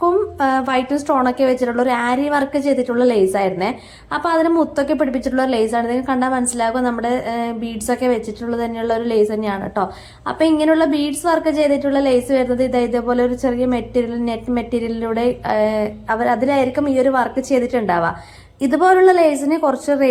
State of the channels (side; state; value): both; identical; correlation 1.00